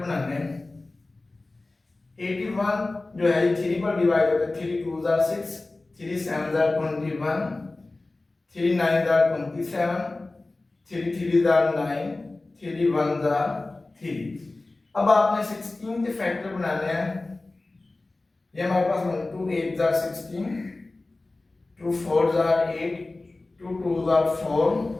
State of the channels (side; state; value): right; quieter; 3.1 dB